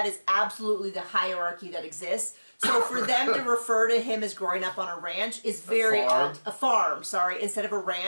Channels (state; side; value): inverted; both; correlation -1.00